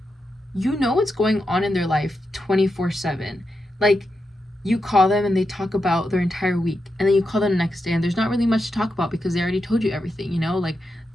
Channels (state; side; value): normal; both; correlation 0.87